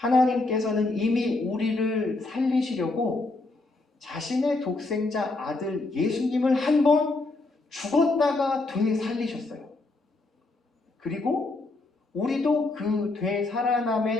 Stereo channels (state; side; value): quieter; right; 3.2 dB